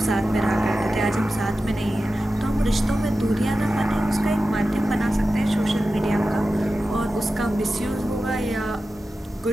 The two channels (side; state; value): both; normal; correlation 0.93